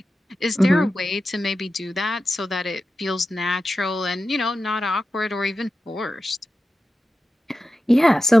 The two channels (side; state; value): both; normal; correlation 0.93